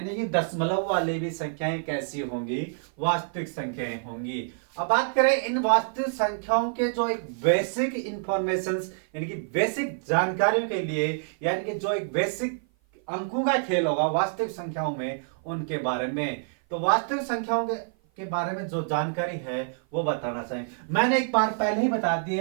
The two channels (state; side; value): silent; left; 55 dB below the other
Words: कि दशमलव वाली भी संख्याएं कैसी होंगी? वास्तविक संख्याएं होंगी। अब बात करें इन वास्तविक संख्याओं के जो एक बेसिक इंफॉर्मेशंस, यानी कि बेसिक जानकारियों के लिए, यानी कि जो एक बेसिक अंकों का खेल होगा वास्तविक संख्याओं में, उनके बारे में। तो वास्तविक संख्याओं के के बारे में जो जानकारी है वो बताना चाहिए। मैंने एक बार पहले ही बता